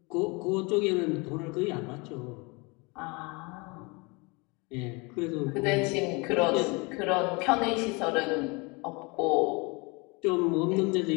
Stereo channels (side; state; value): right; quieter; 28.1 dB